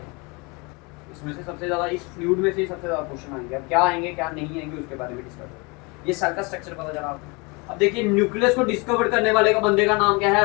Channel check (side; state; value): right; quieter; 28.7 dB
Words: हैं, इसमें से सबसे ज्यादा, इस फ्लूइड में से ही सबसे ज्यादा क्वेश्चन आएंगे। अब क्या आएंगे क्या नहीं आएंगे उसके बारे में डिस्कस करेंगे। ये सेल का स्ट्रक्चर पता चला आपको। अब देखिए न्यूक्लियस को डिस्कवर करने वाले का बंदे का नाम क्या है?